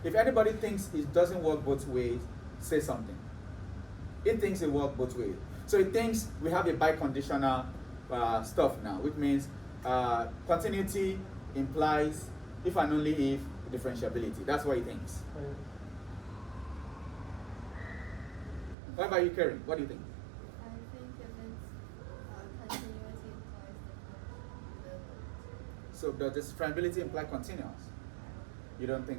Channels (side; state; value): left; drops out; at 18.8 s